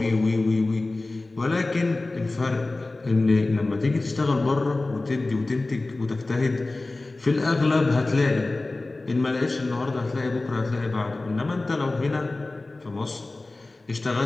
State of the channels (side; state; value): right; quieter; 3.1 dB